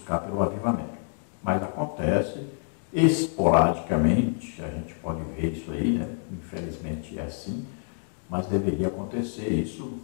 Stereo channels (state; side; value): silent; right; digital silence